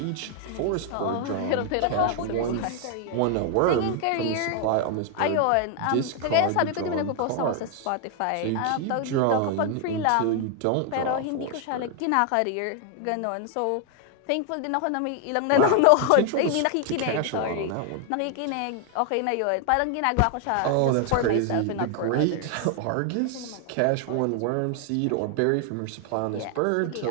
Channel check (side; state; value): both; different; correlation 0.00